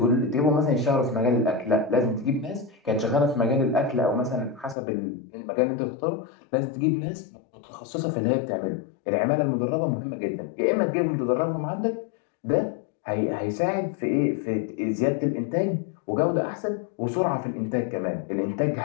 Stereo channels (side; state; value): right; drops out; at 4.8 s